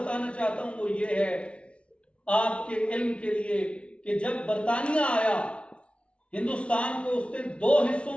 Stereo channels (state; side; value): late; right; 0.060 ms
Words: चाहता हूं वो ये है आपके इल्म के लिए कि जब बरतानिया आया हिंदुस्तान को उसने दो हिस्सों